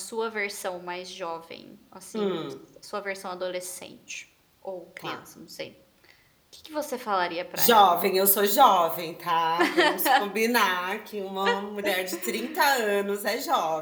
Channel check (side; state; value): both; identical; correlation 1.00